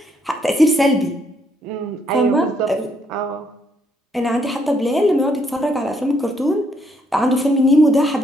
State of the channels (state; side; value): normal; both; correlation 0.72